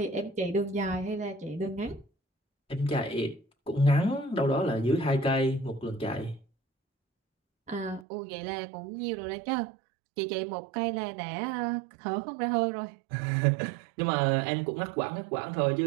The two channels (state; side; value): drops out; left; at 8.1 s